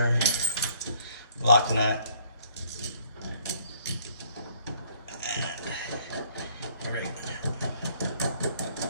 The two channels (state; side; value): inverted; both; correlation -0.62